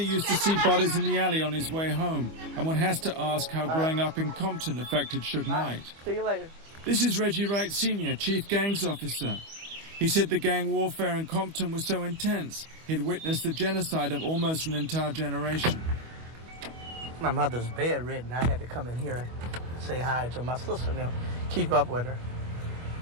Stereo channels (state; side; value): late; left; 25 ms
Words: used to see bodies in the alley on his way home, and one has to ask how growing up in Compton affected Suge Knight. See you later. This is Reggie Wright Sr., Chief Gangs Officer. He said the gang warfare in Compton was so intense, he'd witnessed the genocide of almost an entire generation. My mother's bedridden. I had to come in here and say hi to my sister and them, keep up with her.